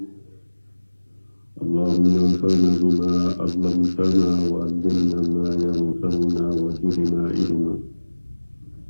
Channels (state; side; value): inverted; both; correlation -1.00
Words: اللهم انفعنا بما علمتنا وعلمنا ما ينفعنا وزدنا علما.